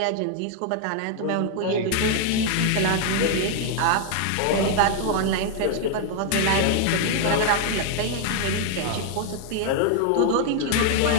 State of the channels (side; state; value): both; different; correlation 0.00